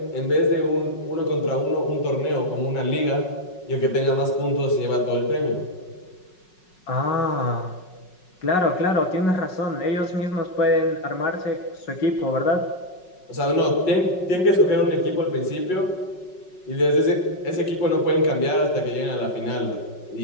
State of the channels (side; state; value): right; late; 5.4 ms